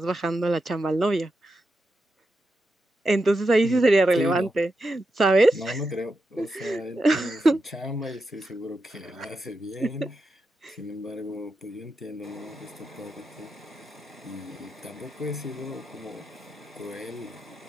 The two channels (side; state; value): both; normal; correlation 0.87